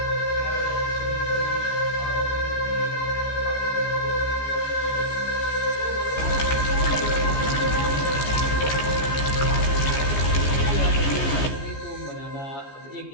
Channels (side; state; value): right; late; 14 ms